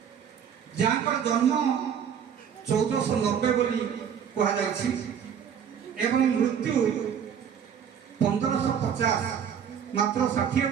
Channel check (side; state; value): left; quieter; 8.0 dB